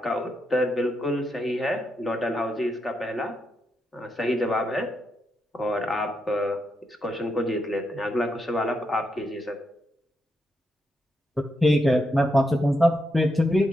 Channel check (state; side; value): normal; both; correlation 0.82